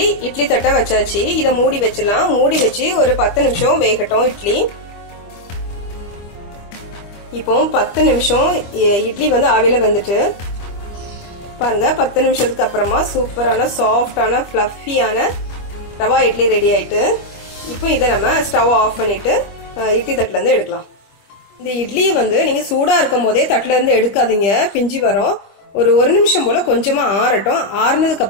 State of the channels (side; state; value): right; late; 25 ms